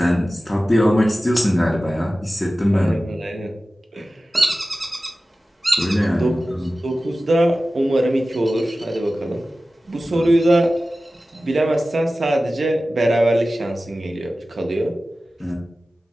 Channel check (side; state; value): both; normal; correlation 0.95